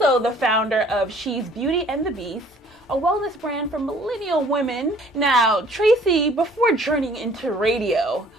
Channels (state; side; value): normal; both; correlation 0.55